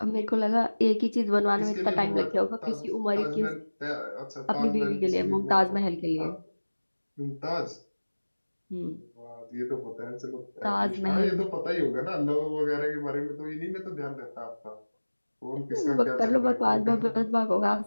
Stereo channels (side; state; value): both; inverted; correlation -1.00